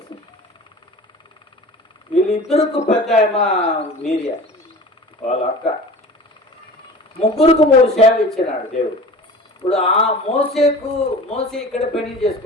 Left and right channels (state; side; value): normal; both; correlation 0.39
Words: వీళ్ళిద్దరికి పెద్ద మీరియా వాళ్ళ అక్క. ముగ్గురికి 3 సేవ ఇచ్చినాడు దేవుడు. ఇప్పుడు ఆ మోసే ఇక్కడ పెళ్లి